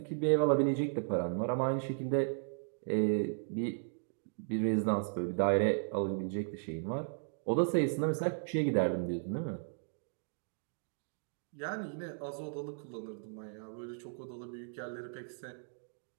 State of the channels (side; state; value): left; silent; digital silence